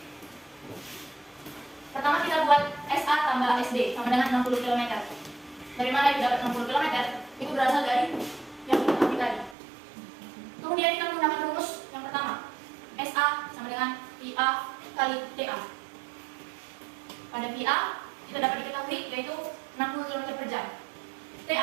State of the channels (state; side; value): drops out; left; at 9.6 s